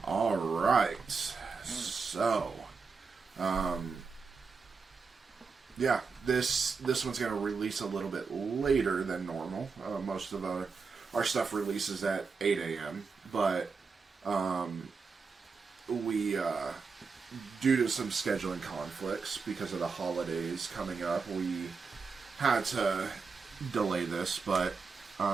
Alright, so, this one's going to release a little bit later than normal. Most of our stuff releases at 8 a.m., but we, due to some scheduling conflicts, because of the holidays coming up, we had to delay this, but,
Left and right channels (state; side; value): quieter; left; 4.9 dB